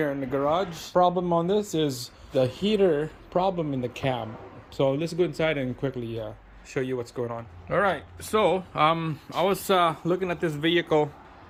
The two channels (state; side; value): identical; both; correlation 1.00